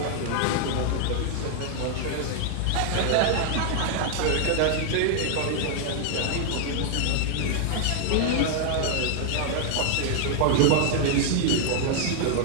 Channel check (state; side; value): different; both; correlation 0.00